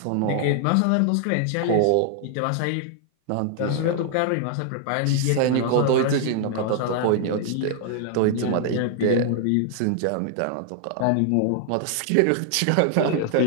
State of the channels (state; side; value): different; both; correlation 0.00